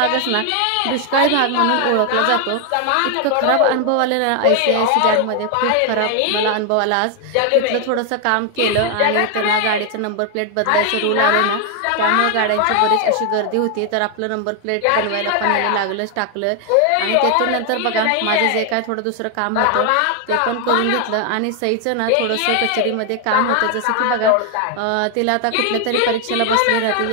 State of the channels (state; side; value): different; both; correlation 0.01